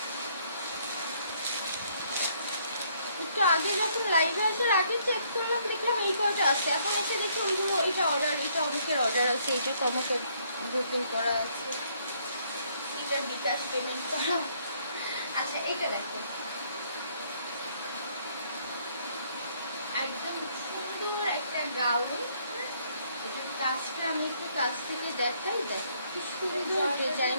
একটু আগে যখন লাইভে আসার আগে চেক করলাম, দেখলাম এই কয়টা আছে, এখন এসে দেখি ওইগুলো, এটা অর্ডার, এটা অনেকের অর্ডার আছে, এটা কমকে বুকিং করা আছে, এটার বিকাশ পেমেন্ট করা। আচ্ছা, এটা দেখো, একদম সুন্দর একটা গাউন, কাজটা আমি একটু কাছ থেকে দেখাই, দেখো কি সুন্দর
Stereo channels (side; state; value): both; inverted; correlation -0.67